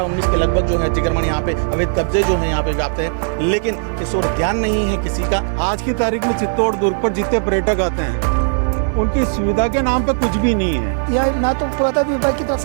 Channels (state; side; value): silent; left; digital silence